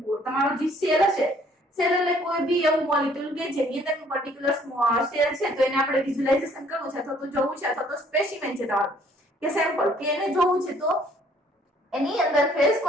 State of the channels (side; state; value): both; normal; correlation 0.61